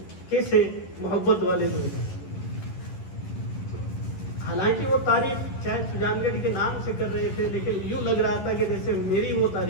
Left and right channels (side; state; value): right; late; 11 ms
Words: کیسے محبت والے لوگ ہیں. حالانکہ وہ تعریف شاید سجان گڑھ کے نام سے کر رہے تھے، لیکن یوں لگ رہا تھا کہ جیسے میری وہ